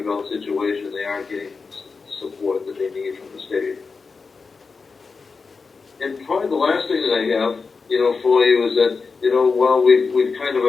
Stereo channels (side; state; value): right; quieter; 4.7 dB